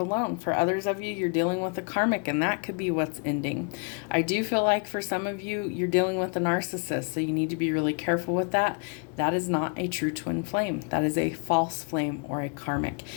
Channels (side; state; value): right; quieter; 37.2 dB